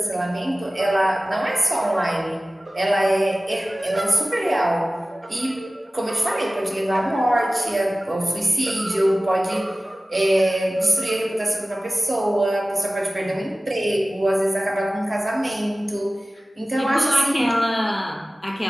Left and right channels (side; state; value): both; normal; correlation 0.97